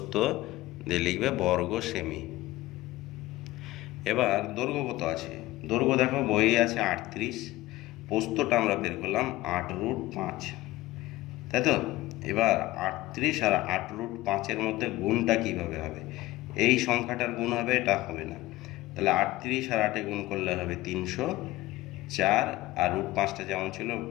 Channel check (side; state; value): right; quieter; 17.8 dB